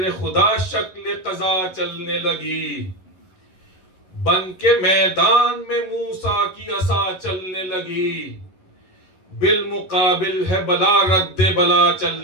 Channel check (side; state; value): right; late; 11 ms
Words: خدا شکل قضا چلنے لگی، بن کے میدان میں موسیٰ کی عصا چلنے لگی، بالمقابل ہے بلا رد بلا